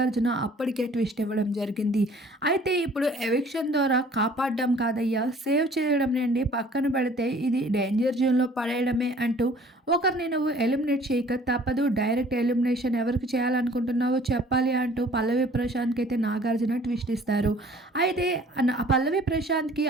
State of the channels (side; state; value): both; normal; correlation 0.53